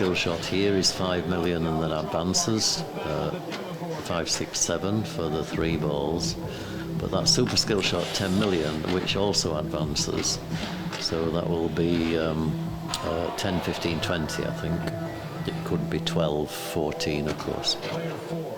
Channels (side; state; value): both; identical; correlation 1.00